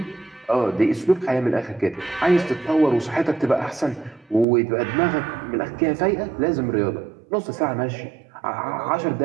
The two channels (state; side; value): drops out; left; at 4.5 s